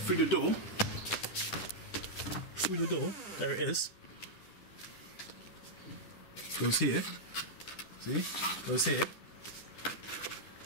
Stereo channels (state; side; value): late; right; 11 ms